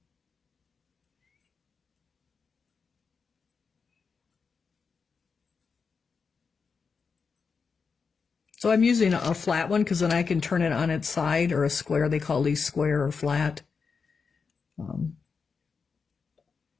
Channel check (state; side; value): quieter; right; 5.3 dB